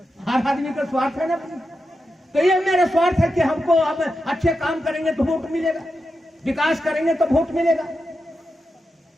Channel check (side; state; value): both; normal; correlation 0.88